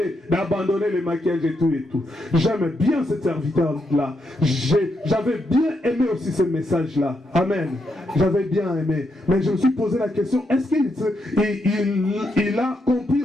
d'abandonner le maquillage et tout. J'aime bien ce serviteur-là. J'avais bien aimé aussi ce message-là. Amen. J'avais bien aimé. Mais je me suis posé la question, est-ce qu'il a compris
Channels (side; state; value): both; normal; correlation 0.81